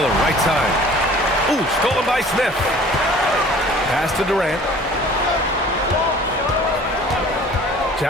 right side. Ooh, stolen by Smith. Pass to Durant.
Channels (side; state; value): both; normal; correlation 0.48